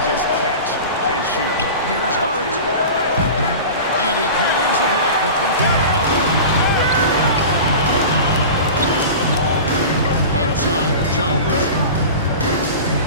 just catch and shoot. Here's Hart. And he cans it back. The three-pointer up one. Outside, Jones.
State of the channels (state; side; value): inverted; both; correlation -0.33